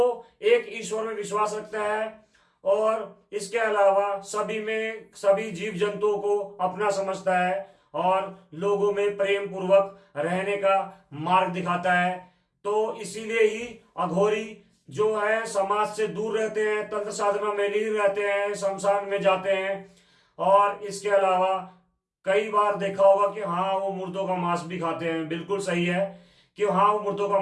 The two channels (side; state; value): both; identical; correlation 1.00